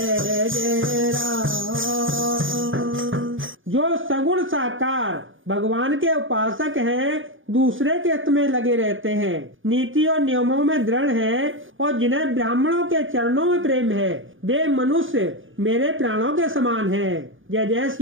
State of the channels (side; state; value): left; late; 0.58 ms